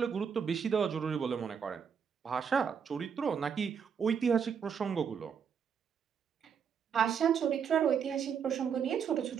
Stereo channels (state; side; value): quieter; left; 7.1 dB